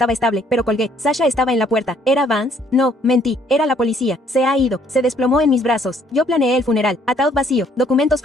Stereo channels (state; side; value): normal; both; correlation 0.64